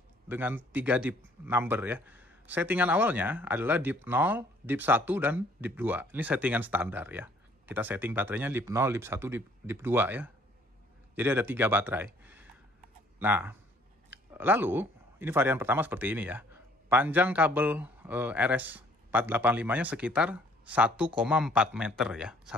dengan 3 DIP number ya. Settingan awalnya adalah DIP 0, DIP 1, dan DIP 2. Ini settingan standar ya. Kita setting baterainya DIP 0, DIP 1, DIP 2 ya. Jadi ada 3 baterai. Nah, lalu ini varian pertama seperti ini ya. Panjang kabel RS485-nya sekitar 1,4 meter ya.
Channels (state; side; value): normal; both; correlation 0.60